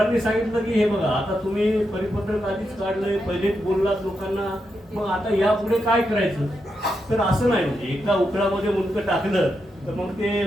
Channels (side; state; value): both; normal; correlation 0.85